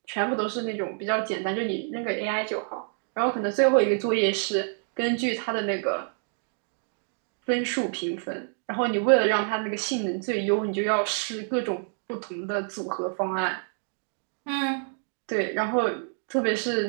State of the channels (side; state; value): left; silent; 59 dB below the other